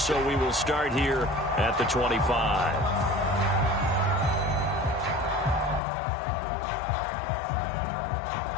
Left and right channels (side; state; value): right; drops out; at 5.8 s